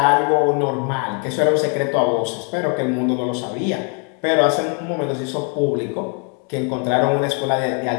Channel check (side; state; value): right; quieter; 35.5 dB